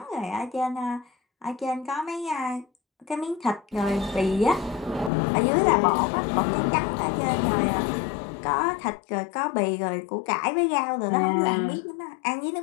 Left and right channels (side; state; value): right; drops out; at 5.1 s